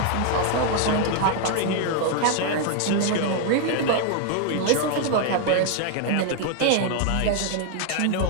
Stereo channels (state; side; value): different; both; correlation 0.00